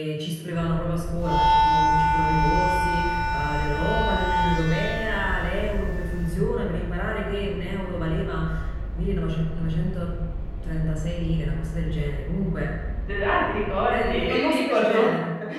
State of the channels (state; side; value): identical; both; correlation 1.00